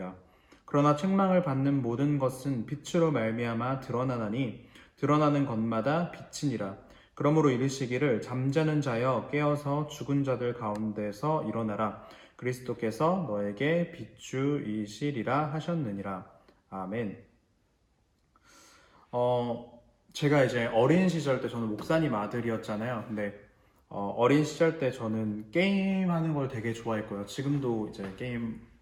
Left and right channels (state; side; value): identical; both; correlation 1.00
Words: 그러나 책망을 받는 모든 것은 빛으로 말미암아 드러나나니 드러나는 것마다 빛이니라. 그러므로 이르시기를 잠자는 자여 깨어서 죽은 자들 가운데서 일어나라. 그리스도께서 너에게 빛주이시리라 하셨느니라. 아멘. 제가 이제 어린 시절 때 저는 목사님 아들이었잖아요. 근데 어린 시절 때 저는 게임하는 걸 되게 좋아했고요. 지금도 이제 게임